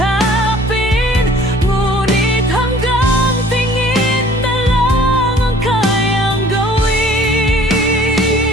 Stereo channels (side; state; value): both; normal; correlation 0.52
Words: ngunit hanggang tingin na lang ang kayang